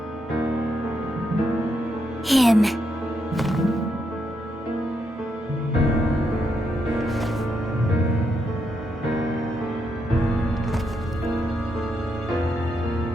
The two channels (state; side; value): normal; both; correlation 0.80